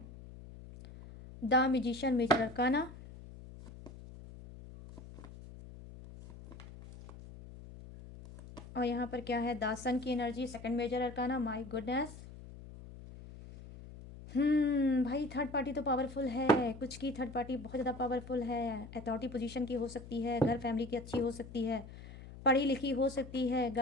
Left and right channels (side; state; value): left; noise; hum, 15 dB below the sound